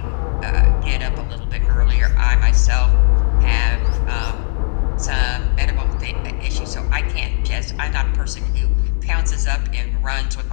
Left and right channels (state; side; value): silent; right; digital silence